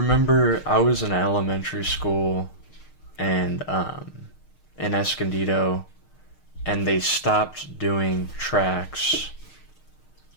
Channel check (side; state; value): right; late; 6.5 ms